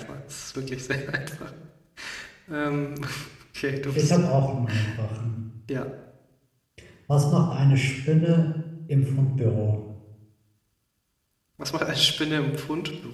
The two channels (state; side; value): identical; both; correlation 1.00